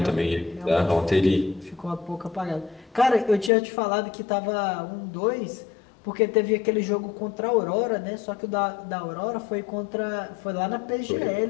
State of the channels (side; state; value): right; drops out; at 3.5 s